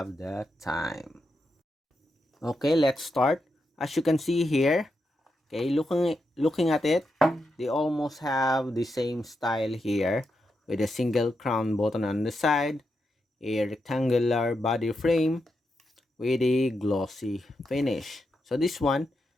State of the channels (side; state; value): both; normal; correlation 0.85